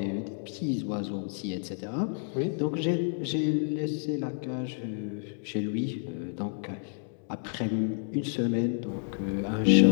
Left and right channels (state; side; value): silent; right; 58 dB below the other